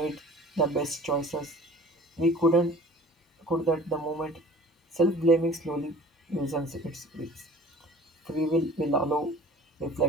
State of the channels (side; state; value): both; normal; correlation 0.46